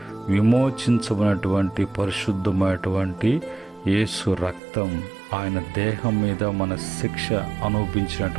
విమోచించబడినటువంటి పరిశుద్ధమైనటువంటి యేసు రక్తం, ఆయన దేహం మీద మన శిక్ష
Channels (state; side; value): drops out; left; at 4.6 s